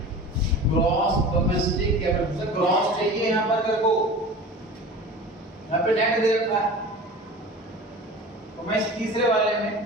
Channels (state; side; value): normal; both; correlation 0.37